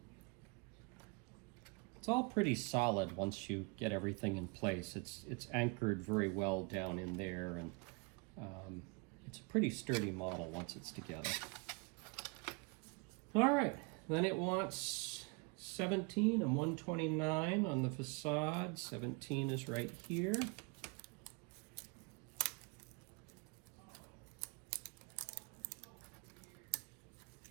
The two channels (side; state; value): left; quieter; 29.7 dB